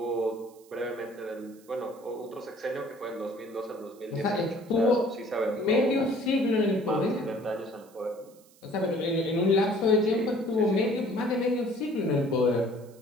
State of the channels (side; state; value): right; noise; hiss, 28 dB below the sound